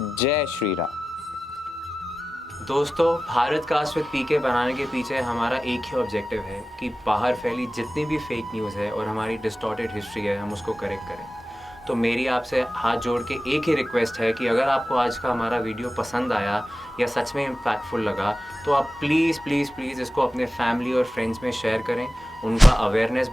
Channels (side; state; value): both; normal; correlation 0.94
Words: जय श्री राम। दोस्तों, भारत का विद पीके बनाने के पीछे हमारा एक ही ऑब्जेक्टिव है कि बाहर फैली जितनी भी फेक न्यूज़ है और हमारी डिस्टॉर्टेड हिस्ट्री है, हम उसको करेक्ट करें। तो मेरी आपसे हाथ जोड़ के एक ही रिक्वेस्ट है कि अगर आपको आज का हमारा वीडियो पसंद आया या सच में इम्पैक्टफुल लगा, तो आप प्लीज़ प्लीज़ प्लीज़ इसको अपने फैमिली और फ्रेंड्स में शेयर करें, उनका अवेयरनेस